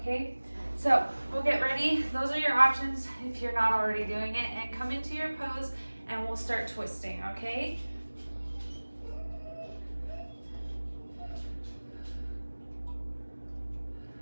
so we'll get ready. Those are your options if you're not already doing it, and come into your pose and we'll start twisting, okay?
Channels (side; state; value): both; inverted; correlation -1.00